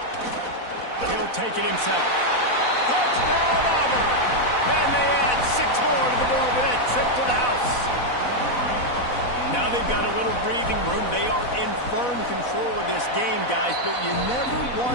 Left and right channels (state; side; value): late; right; 4.1 ms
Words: He'll take it himself. Touchdown, Auburn! And they add 6 more to the board with that trip to the house. Now they've got a little breathing room. They are in firm control of this game, guys, but you never